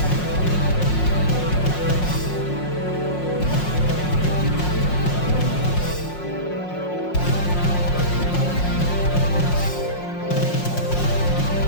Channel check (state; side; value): late; right; 5.5 ms